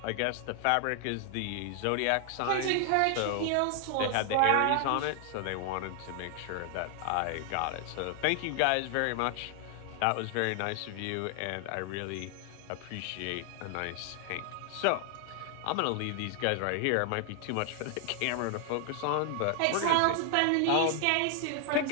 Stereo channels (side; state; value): both; different; correlation 0.00